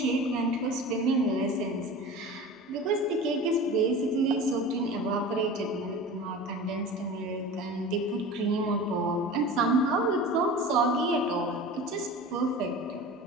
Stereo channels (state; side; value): normal; both; correlation 0.35